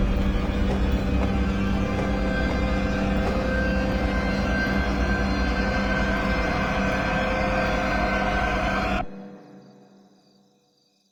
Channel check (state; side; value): identical; both; correlation 1.00